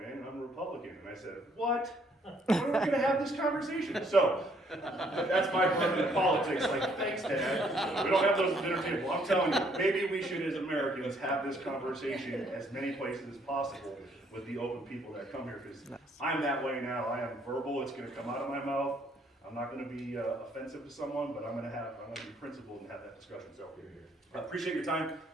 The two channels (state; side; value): normal; both; correlation 0.67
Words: and I'm a Republican. And I said, what? When are we going to have this conversation? So, that's my part of politics. Like, thanks, Dad. We don't have those at the dinner table. I'm telling you, maybe we should, as Americans, have this conversation as many places as possible with the open people that come here. Because I'm that way now. I am verbal. It's going to come out of my mouth. I'm not going to be offensive to someone, but I'm going to be principled and have that discussion. So, I appreciate your time.